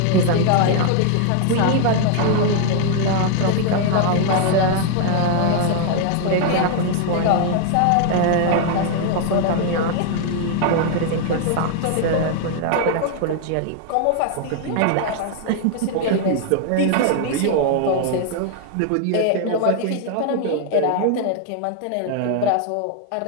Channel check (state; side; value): different; both; correlation 0.00